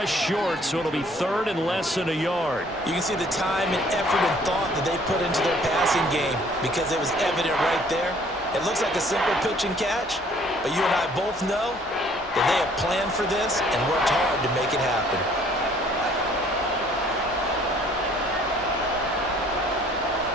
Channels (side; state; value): both; normal; correlation 0.58